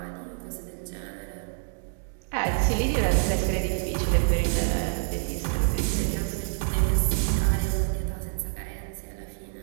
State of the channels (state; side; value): silent; left; digital silence